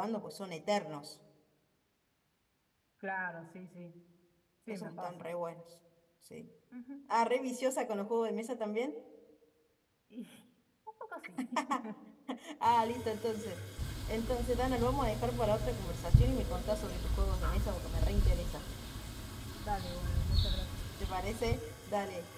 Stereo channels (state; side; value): identical; both; correlation 1.00